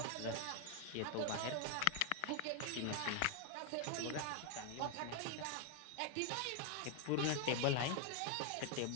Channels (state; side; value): different; both; correlation 0.00